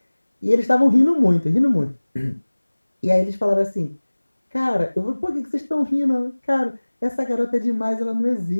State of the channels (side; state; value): both; inverted; correlation -1.00